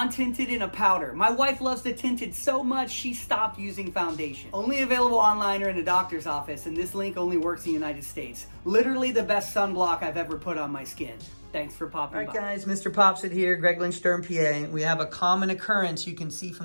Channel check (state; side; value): inverted; both; correlation -1.00